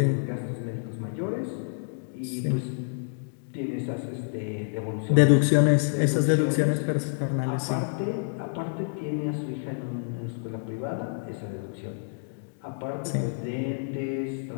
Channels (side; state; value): right; silent; digital silence